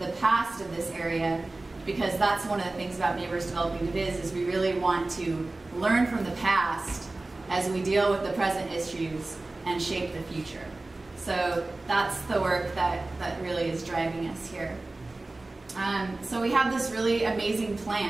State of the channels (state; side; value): quieter; left; 3.0 dB